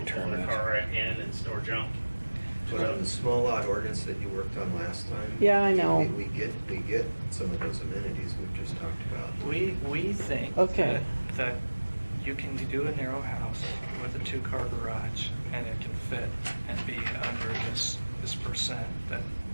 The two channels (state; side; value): inverted; both; correlation -1.00